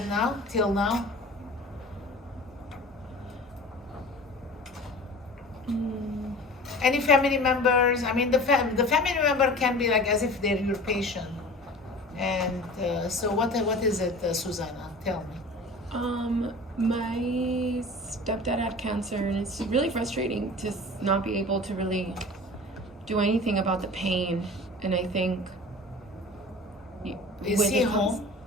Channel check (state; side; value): normal; both; correlation 0.40